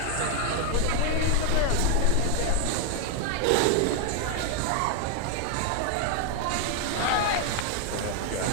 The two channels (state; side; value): different; both; correlation 0.01